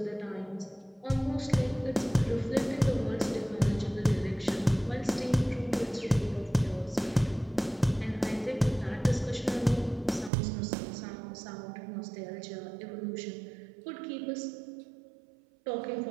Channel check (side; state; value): left; drops out; at 10.3 s